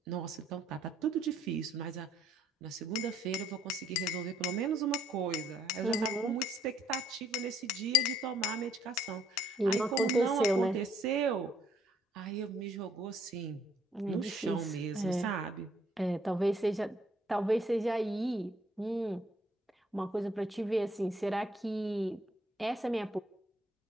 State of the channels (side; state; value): both; normal; correlation 0.66